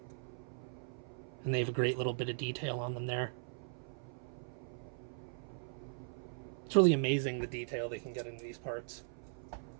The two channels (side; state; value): left; silent; 52 dB below the other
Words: and they have a great little bit of detail on them there. It's really amazing the detail they can get into these parts.